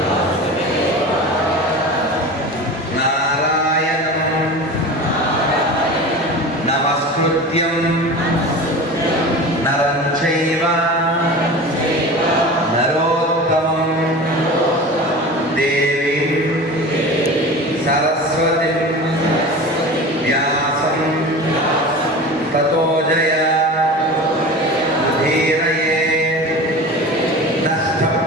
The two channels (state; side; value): normal; both; correlation 0.33